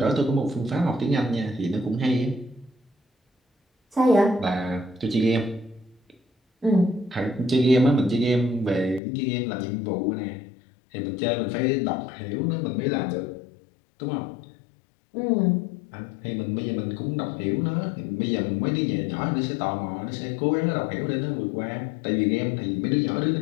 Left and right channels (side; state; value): right; drops out; at 9.0 s